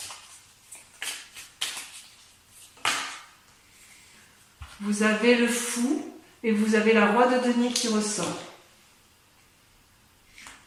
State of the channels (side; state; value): both; identical; correlation 1.00